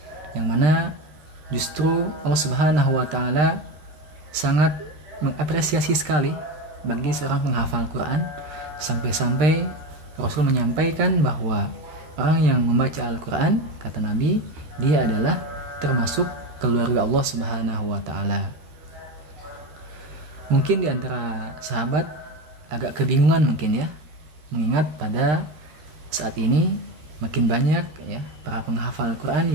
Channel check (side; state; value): left; late; 13 ms